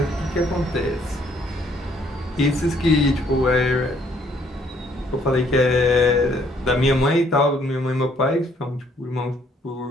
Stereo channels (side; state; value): both; normal; correlation 0.65